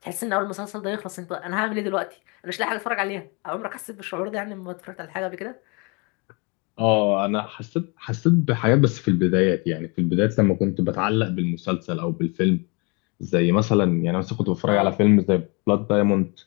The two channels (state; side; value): quieter; right; 30.5 dB